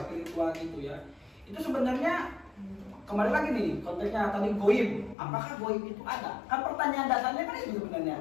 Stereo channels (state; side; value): drops out; right; at 5.2 s